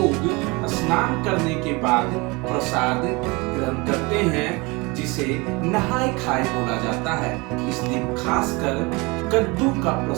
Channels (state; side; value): quieter; left; 26.0 dB